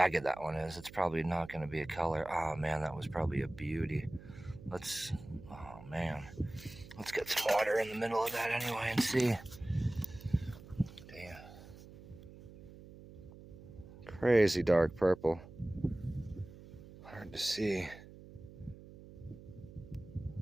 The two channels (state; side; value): noise; right; hum, 17 dB below the sound